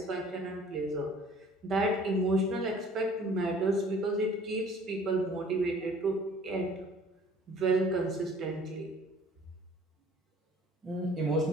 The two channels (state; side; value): normal; both; correlation 0.52